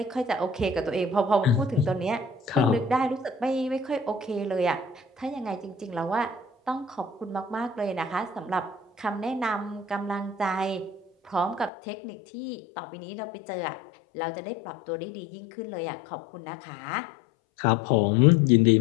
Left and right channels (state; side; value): drops out; right; at 11.7 s